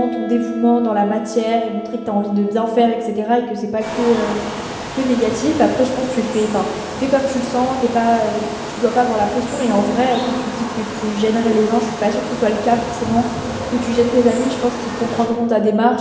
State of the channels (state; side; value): identical; both; correlation 1.00